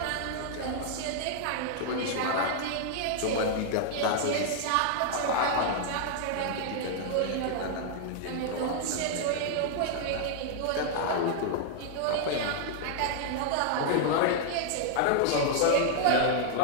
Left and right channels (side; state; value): both; different; correlation 0.00